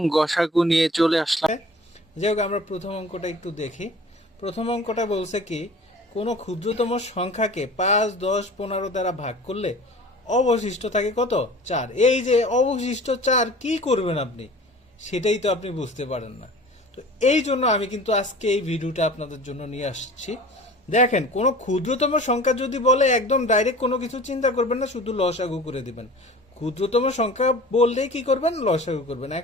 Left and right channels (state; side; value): normal; both; correlation 0.43